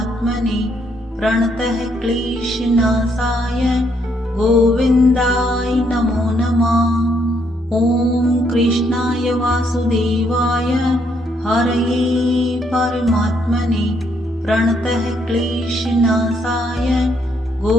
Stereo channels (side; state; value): both; normal; correlation 0.72